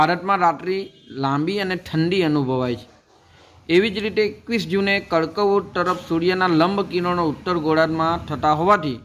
રાત્રિ લાંબી અને ઠંડી અનુભવાય છે. એવી જ રીતે 21 જૂને કર્કવૃત્ત તરફ સૂર્યના લંબ કિરણો ઉત્તર ગોળાર્ધમાં થતા હોવાથી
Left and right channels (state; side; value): identical; both; correlation 1.00